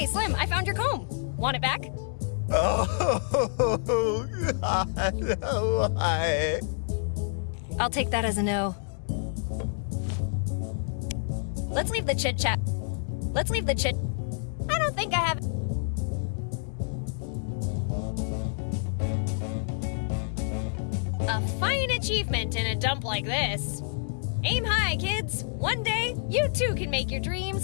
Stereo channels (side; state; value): right; silent; digital silence